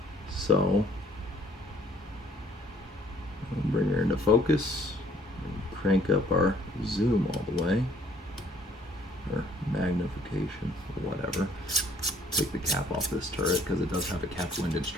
So I'll bring her into focus and crank up our zoom all the way, or magnification, or whatever. Take the cap off this turret because it does have a cap windage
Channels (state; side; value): normal; both; correlation 0.60